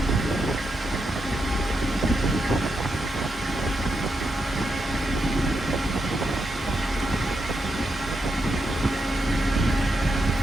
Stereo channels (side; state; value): both; normal; correlation 0.84